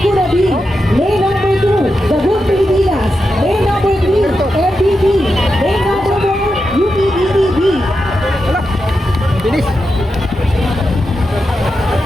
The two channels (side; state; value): both; normal; correlation 0.88